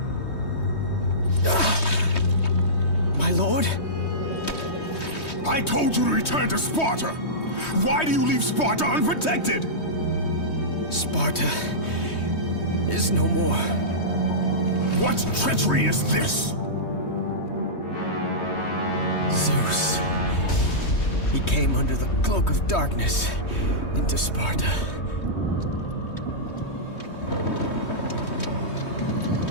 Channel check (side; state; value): right; late; 3.2 ms